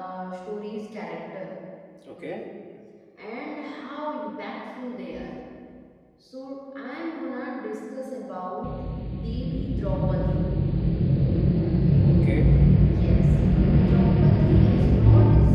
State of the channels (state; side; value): identical; both; correlation 1.00